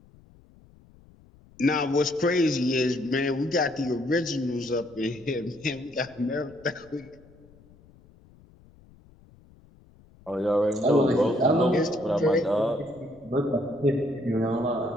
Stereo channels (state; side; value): noise; left; rumble, 26 dB below the sound